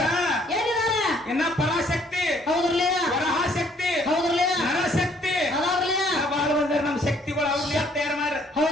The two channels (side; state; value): both; normal; correlation 0.63